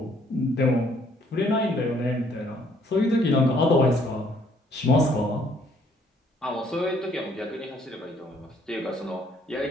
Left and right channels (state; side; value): normal; both; correlation 0.64